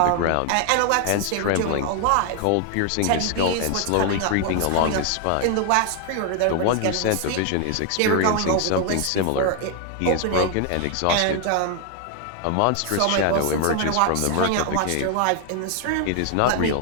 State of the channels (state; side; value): different; both; correlation 0.00